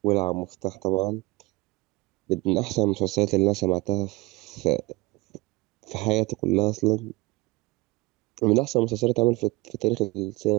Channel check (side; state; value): left; quieter; 22.3 dB